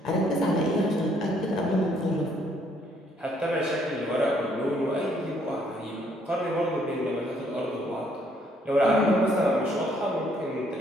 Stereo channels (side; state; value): both; normal; correlation 0.67